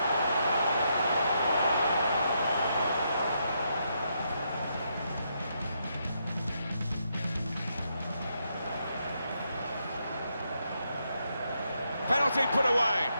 Penalty put away.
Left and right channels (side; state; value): both; inverted; correlation -0.79